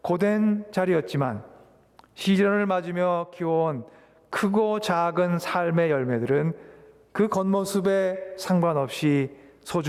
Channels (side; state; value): both; identical; correlation 1.00